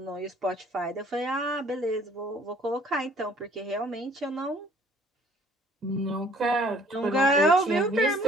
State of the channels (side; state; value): both; normal; correlation 0.57